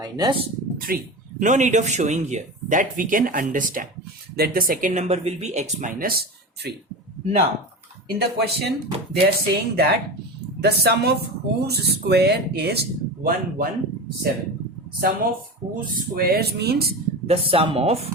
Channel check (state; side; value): normal; both; correlation 0.26